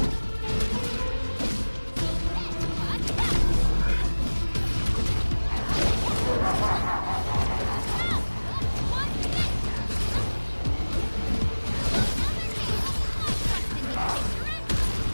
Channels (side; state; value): both; inverted; correlation -1.00